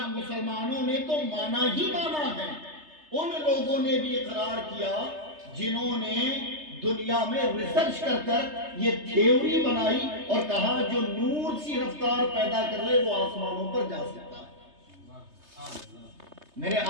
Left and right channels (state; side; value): late; left; 3.3 ms